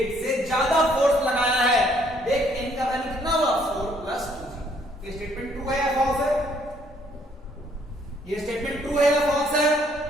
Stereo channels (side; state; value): both; normal; correlation 0.66